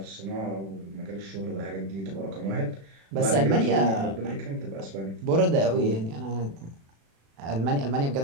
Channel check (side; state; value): left; late; 36 ms